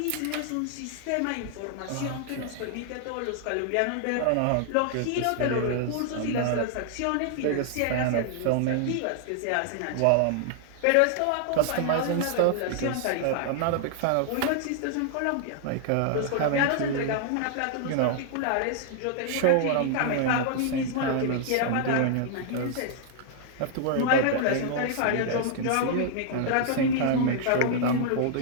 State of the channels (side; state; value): both; different; correlation -0.01